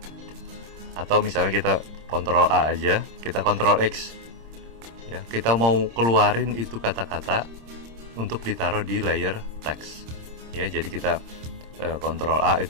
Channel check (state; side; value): late; left; 26 ms